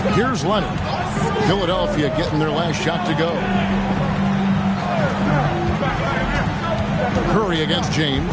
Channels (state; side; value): identical; both; correlation 1.00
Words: Here's Leonard. Philadelphia getting their last shot to go. Curry against